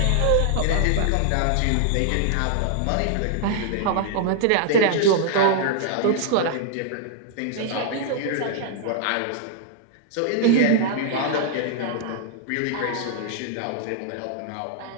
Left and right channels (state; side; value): different; both; correlation -0.01